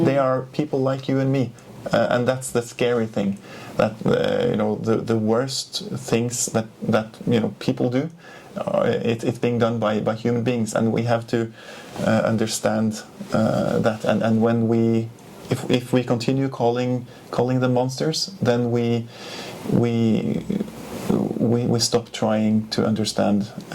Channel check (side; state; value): both; identical; correlation 1.00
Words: are people like you and me, and that's the scary thing. That the worst things that people do, it's being done by human beings, and we have to understand that. And when if we continue calling them monsters, then we stop trying to understand